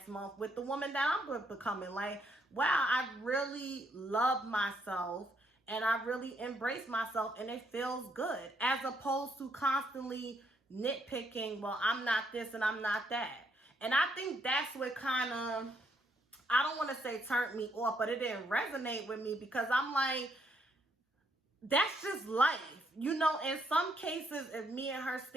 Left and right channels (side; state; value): both; normal; correlation 0.73